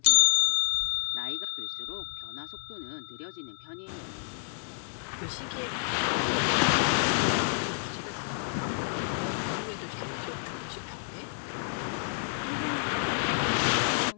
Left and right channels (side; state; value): right; silent; 58 dB below the other